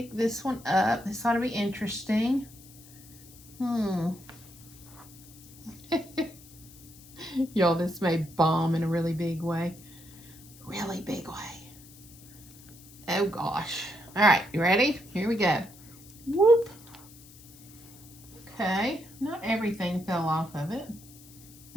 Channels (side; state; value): left; noise; hiss, 21 dB below the sound